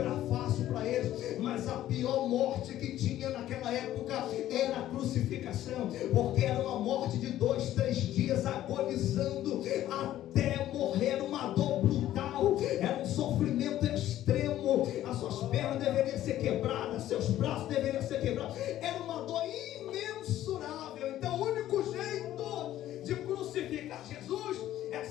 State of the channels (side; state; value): right; quieter; 13.1 dB